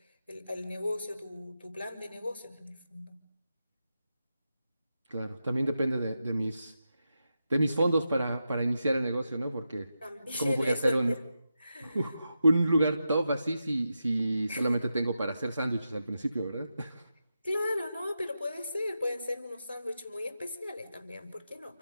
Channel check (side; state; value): both; inverted; correlation -0.88